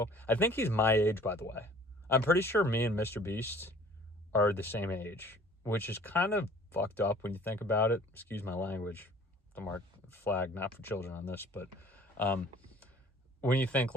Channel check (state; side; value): normal; both; correlation 0.51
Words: I think he's my age, by the way. I'm pretty sure me and Mr. Beast are the same age, which is kind of fucked up when you think about it. Excuse my language. The mark flag, not for children on this, but when you think,